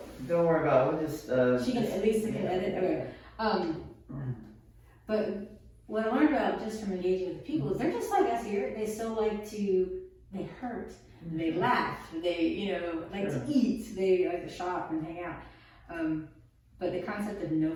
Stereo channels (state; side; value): identical; both; correlation 1.00